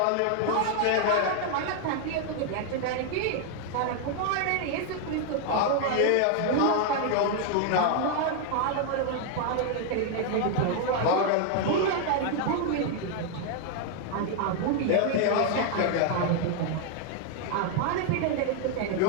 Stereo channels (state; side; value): different; both; correlation 0.00